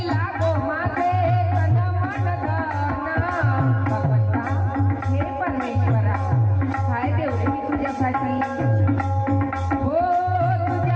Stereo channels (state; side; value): identical; both; correlation 1.00